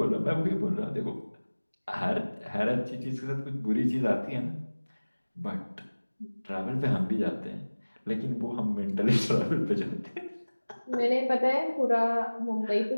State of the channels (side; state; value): both; inverted; correlation -1.00